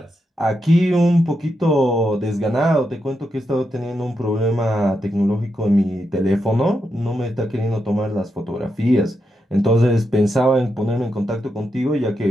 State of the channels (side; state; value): both; normal; correlation 0.84